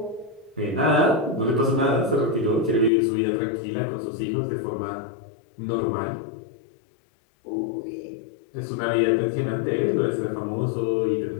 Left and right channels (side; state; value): right; drops out; at 2.9 s